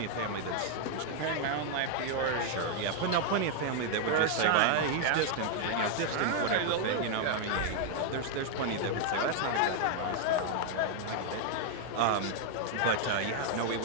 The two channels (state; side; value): different; both; correlation 0.00